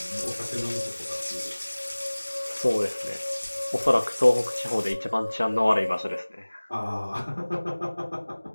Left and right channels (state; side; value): inverted; both; correlation -1.00